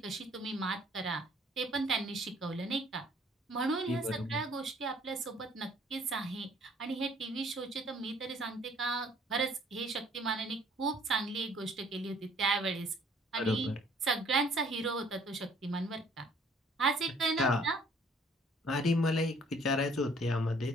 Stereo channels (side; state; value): both; normal; correlation 0.59